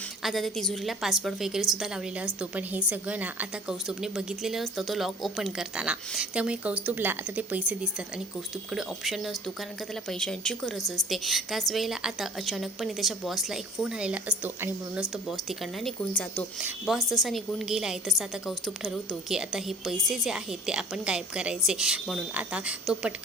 आता त्या तिजोरीला पासवर्ड वगैरे सुद्धा लावलेला असतो. पण हे सगळं ना आता कौस्तुभने बघितलेलं असतं तो लॉक ओपन करताना. त्यामुळे कौस्तुभला आता ते पैसे दिसतात आणि कौस्तुभकडे ऑप्शन नसतो, कारण का त्याला पैशांची गरज असते. त्याच वेळेला आता अचानकपणे त्याच्या बॉसला एक फोन आलेला असतो आणि म्हणूनच तो बॉस तिकडनं निघून जातो. बॉस जसा निघून गेला आहे तसं आता कौस्तुभ ठरवतो की आता हे पैसे जे आहेत ते आपण गायब करायचे. म्हणून आता तो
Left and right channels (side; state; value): both; normal; correlation 0.47